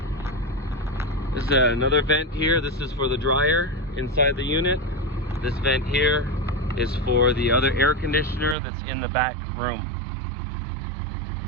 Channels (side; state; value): left; drops out; at 8.6 s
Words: this is another vent here. This is for the dryer inside the unit. This vent here is for the other air conditioner that's in the back room.